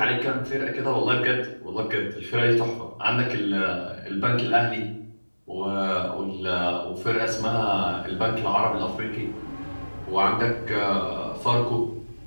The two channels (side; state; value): both; inverted; correlation -1.00